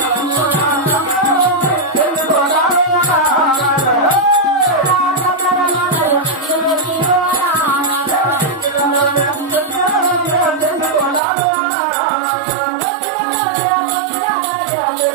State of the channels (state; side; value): drops out; left; at 11.2 s